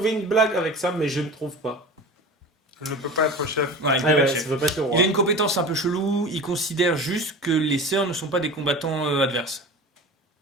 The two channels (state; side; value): normal; both; correlation 0.34